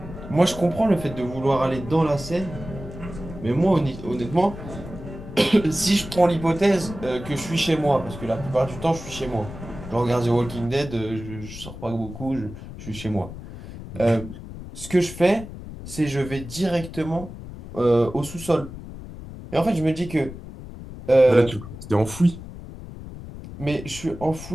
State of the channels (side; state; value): left; noise; rumble, 12 dB below the sound